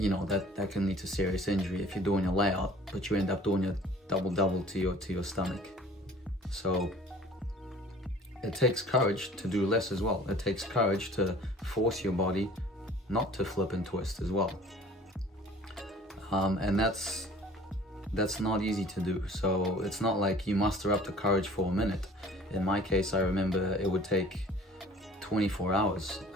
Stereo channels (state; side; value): normal; both; correlation 0.49